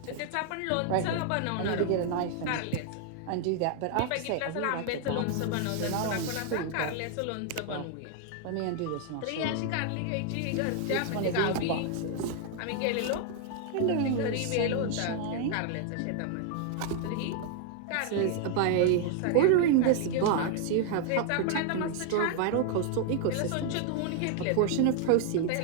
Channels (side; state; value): both; different; correlation 0.00